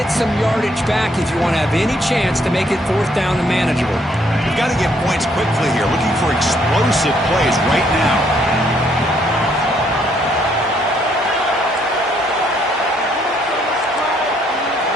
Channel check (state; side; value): normal; both; correlation 0.69